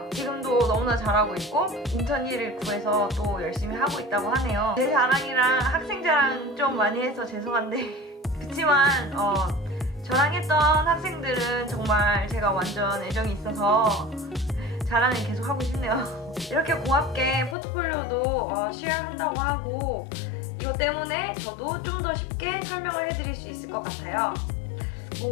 지금도 너무나 잘하고 있고 인턴 일을 구해서 또 열심히 하고 있다고 하네요. 제 자랑이랑 학생 자랑 좀 많이 해서 죄송한데 그치만 저랑 했던 학생들은 정말 제가 완전 애정이 있어서 자랑을 계속 하고 싶네요. 이렇게 고맙게 포트폴리오도 쉐어한다고 하고 이것 때문에 저도 좀 더 쉽게 설명을 해드릴 수 있을 것 같아요.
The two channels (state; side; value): drops out; right; at 17.6 s